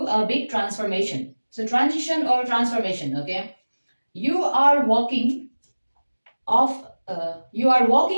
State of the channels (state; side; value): inverted; both; correlation -1.00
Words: a big transformation. So transition or transformation. Okay, you are walking off